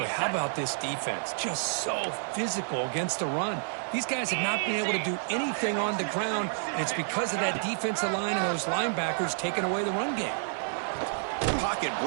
how about this defense? Just so physical against the run. These guys have not been able to do anything on the ground, and it's because of that defensive line and those linebackers taking away the run game. Pocket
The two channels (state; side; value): silent; left; digital silence